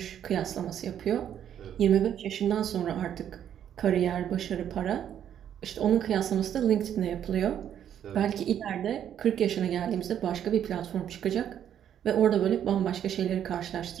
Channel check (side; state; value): left; quieter; 9.8 dB